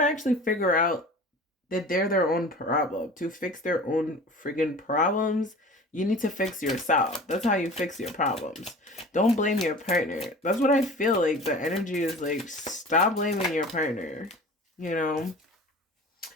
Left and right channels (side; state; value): both; normal; correlation 0.40